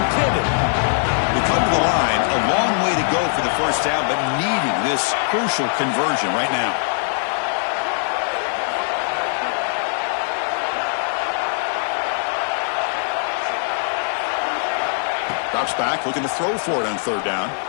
pivot. They come to the line, a long way to go for the first down, but needing this crucial conversion right now. Drops back, looking to throw for it on third down.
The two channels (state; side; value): silent; right; 65 dB below the other